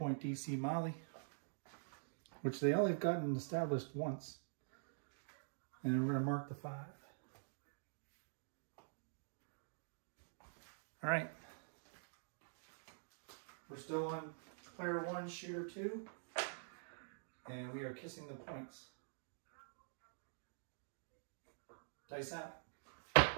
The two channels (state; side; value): silent; left; digital silence